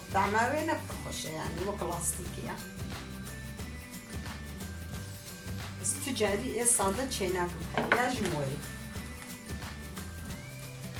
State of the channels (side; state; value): both; identical; correlation 1.00